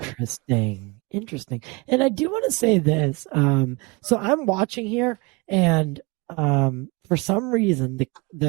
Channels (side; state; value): left; quieter; 26.3 dB